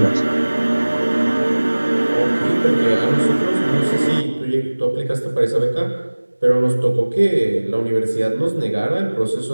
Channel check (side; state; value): both; inverted; correlation -1.00